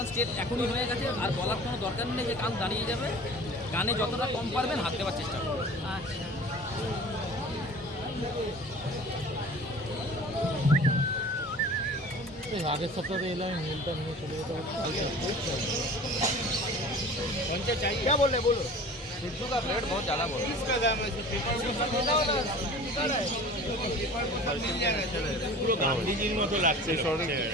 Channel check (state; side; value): normal; both; correlation 0.42